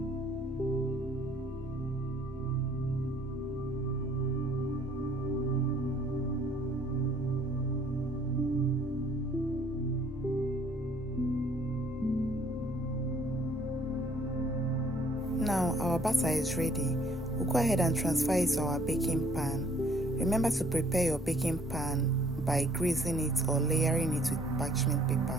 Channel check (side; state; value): both; normal; correlation 0.60